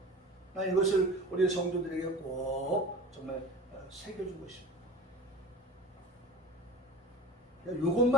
난 이것을 우리 성도들에게 꼭 정말 새겨주고 싶습니다.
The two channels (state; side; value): normal; both; correlation 0.36